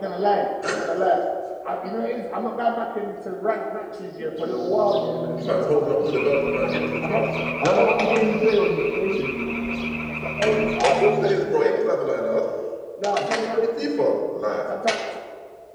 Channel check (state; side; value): identical; both; correlation 1.00